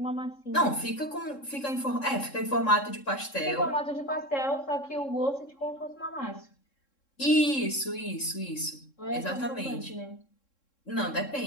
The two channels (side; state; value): right; late; 3.7 ms